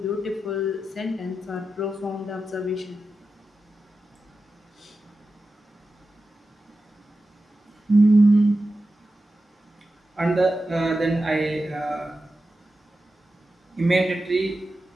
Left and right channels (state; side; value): normal; both; correlation 0.92